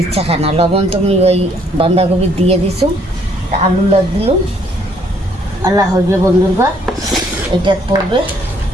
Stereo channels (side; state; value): both; normal; correlation 0.65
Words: খানা, লবণ তুমি ওই বাঁধাকপি দিয়ে দিছো, আলু লাগ দিলুম, আল্লাহ হইবে বন্ধুরা। এটা পড়বে